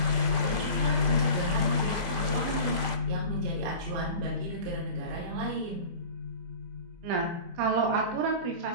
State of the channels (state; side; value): late; left; 24 ms